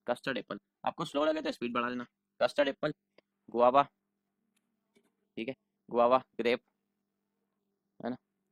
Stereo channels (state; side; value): identical; both; correlation 1.00